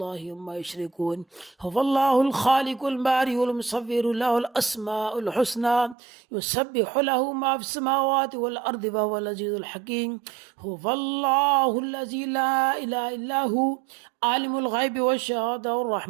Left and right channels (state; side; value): drops out; left; at 6.0 s